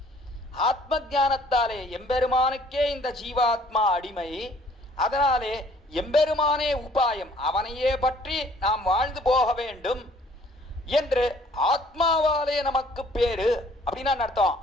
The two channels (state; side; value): normal; both; correlation 0.58